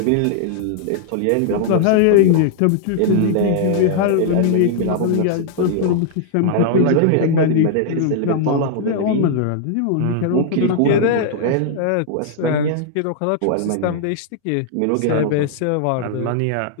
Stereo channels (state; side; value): different; both; correlation 0.00